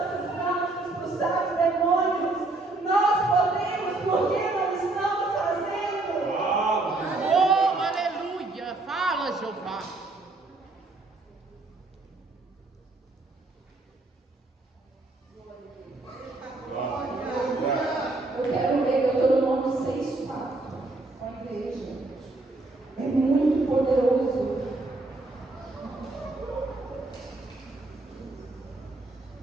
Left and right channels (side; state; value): left; quieter; 3.1 dB